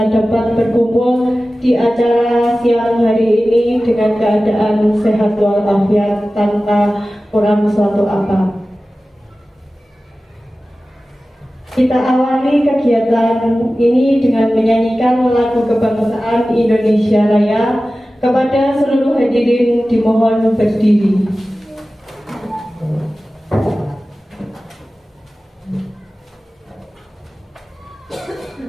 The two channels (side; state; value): both; normal; correlation 0.96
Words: dapat berkumpul di acara siang hari ini dengan keadaan sehat walafiat tanpa kurang suatu apa. Kita awali kegiatan ini dengan menyanyikan lagu kebangsaan Indonesia Raya. Kepada seluruh hadirin dimohon berdiri.